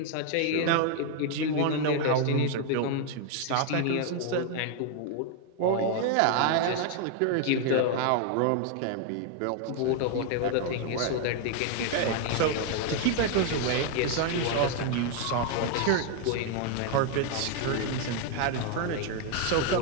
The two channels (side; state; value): both; different; correlation 0.00